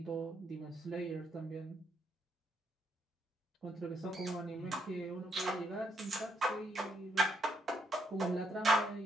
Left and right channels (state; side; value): normal; both; correlation 0.74